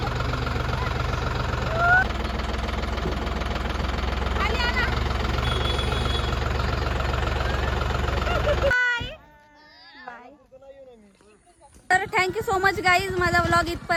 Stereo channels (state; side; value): identical; both; correlation 1.00